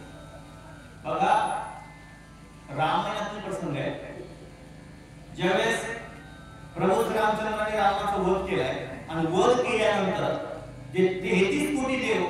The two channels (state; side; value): identical; both; correlation 1.00